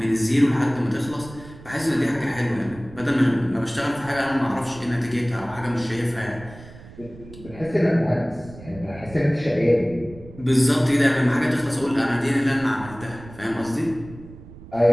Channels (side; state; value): right; noise; rumble, 17 dB below the sound